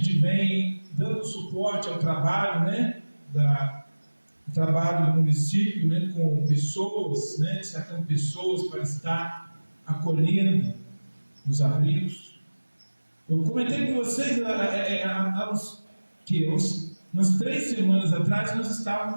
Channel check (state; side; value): inverted; both; correlation -1.00